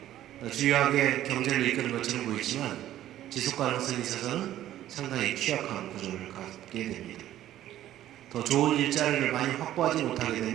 주요하게 경제를 이끄는 것처럼 보이지만 지속 가능성이 있어서는 상당히 취약한 구조를 갖게 됩니다. 더 좋은 일자리를 많이 확보하지 못하게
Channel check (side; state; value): left; quieter; 12.9 dB